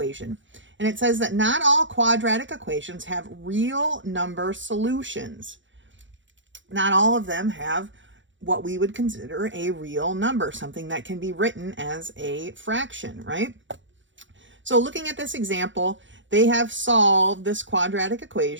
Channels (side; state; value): left; late; 0.55 ms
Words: And it says that not all quadratic equations have real number solutions. Not all of them have what we would consider a real number, something that can be written as a fraction, right? So looking at this example, they have solved this quadratic